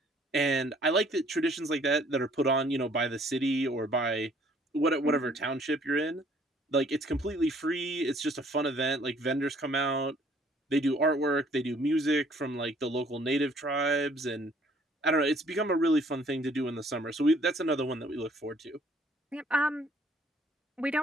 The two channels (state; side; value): normal; both; correlation 0.60